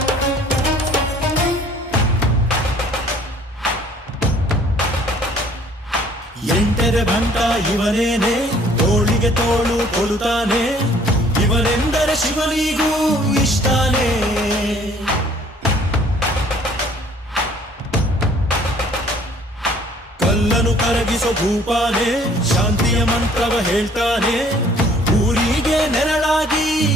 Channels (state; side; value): normal; both; correlation 0.57